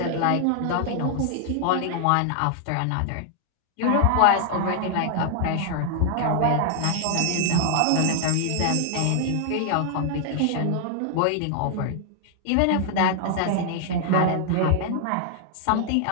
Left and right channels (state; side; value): different; both; correlation 0.00